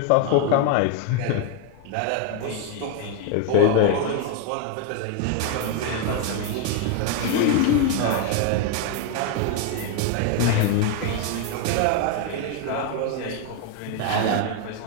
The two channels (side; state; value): both; different; correlation 0.01